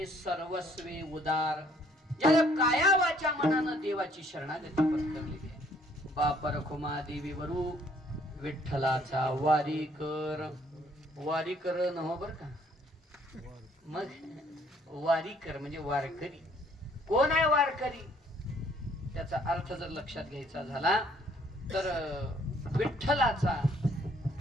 सर्वस्वे उदार, ज्याला काया वाचा मनानं देवाची शरणागती पत्करलेली आहे. बाप रखुमा देवी वरू विठ्ठलाचा वारी कर. वारी कर नव्ह बर का, मग वारी कर म्हणजे वारकरी. कोण आहे वारकरी, त्याचा अर्थ जर लक्षात घ्यायचा झाला तर विठ्ठलाचा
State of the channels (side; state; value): both; normal; correlation 0.63